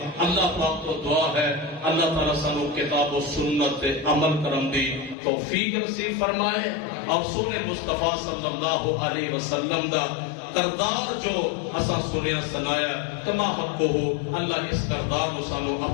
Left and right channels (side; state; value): right; drops out; at 5.2 s